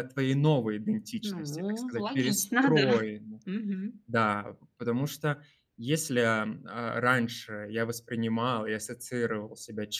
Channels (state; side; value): identical; both; correlation 1.00